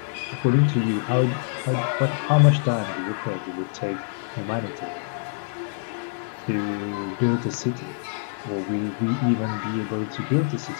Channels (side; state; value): right; silent; 62 dB below the other